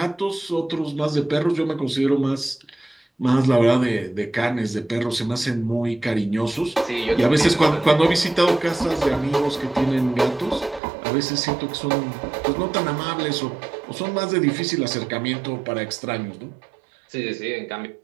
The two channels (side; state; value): left; drops out; at 10.8 s